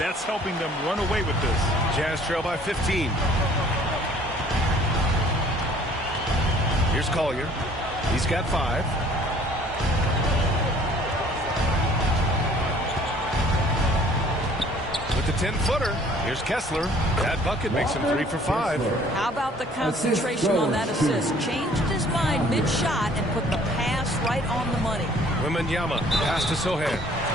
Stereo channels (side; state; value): both; normal; correlation 0.55